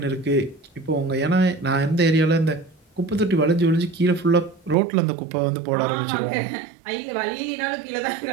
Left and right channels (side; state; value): left; drops out; at 4.8 s